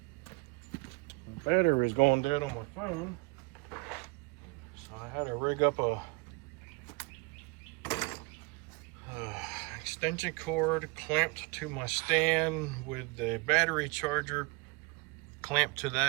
The battery was going dead on my phone, so I had to rig up a extension cord clamped to my stand with the battery charger clamped to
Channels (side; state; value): left; quieter; 27.2 dB